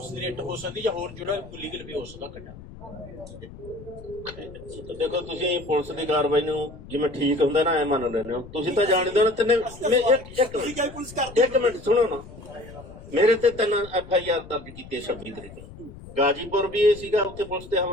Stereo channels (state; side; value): noise; left; rumble, 16 dB below the sound